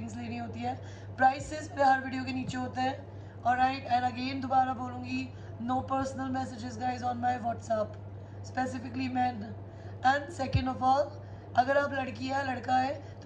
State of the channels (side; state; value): both; identical; correlation 1.00